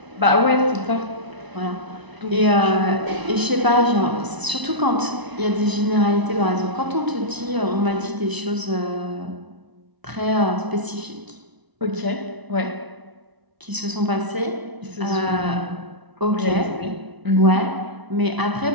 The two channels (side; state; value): left; late; 1.0 ms